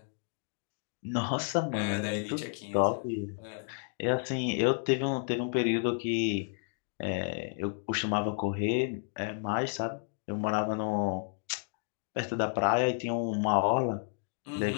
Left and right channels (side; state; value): right; silent; 57 dB below the other